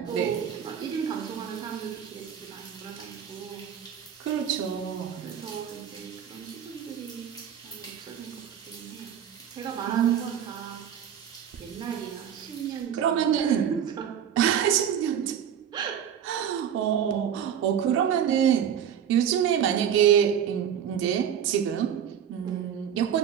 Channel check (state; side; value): quieter; left; 8.9 dB